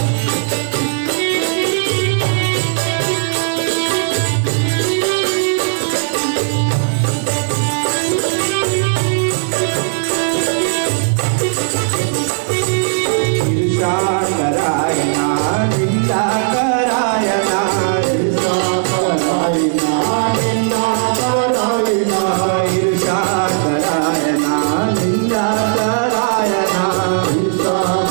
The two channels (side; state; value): left; silent; 69 dB below the other